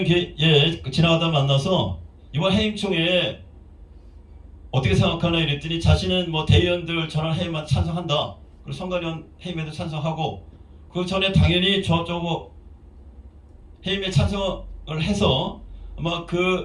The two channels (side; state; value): both; identical; correlation 1.00